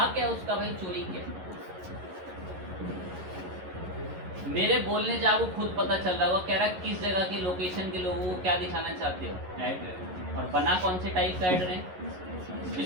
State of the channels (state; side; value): late; left; 11 ms